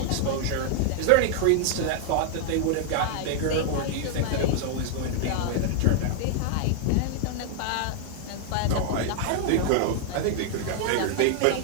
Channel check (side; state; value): both; different; correlation 0.00